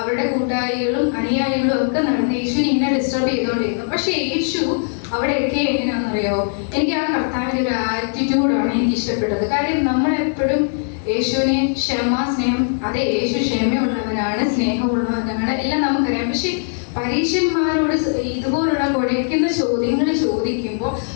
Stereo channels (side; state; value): right; silent; 66 dB below the other